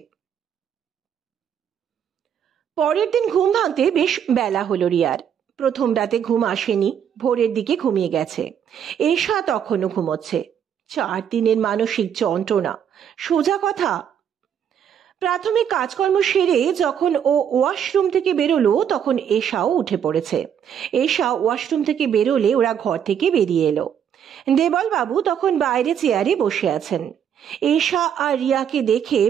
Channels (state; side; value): quieter; left; 8.6 dB